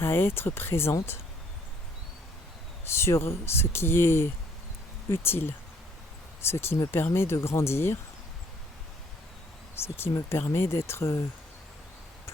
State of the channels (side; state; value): both; normal; correlation 0.63